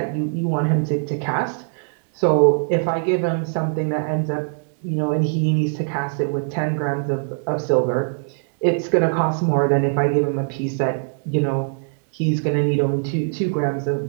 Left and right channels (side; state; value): left; silent; digital silence